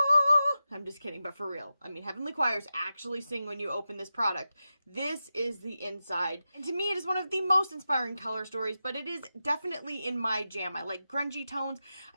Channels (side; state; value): both; inverted; correlation -0.91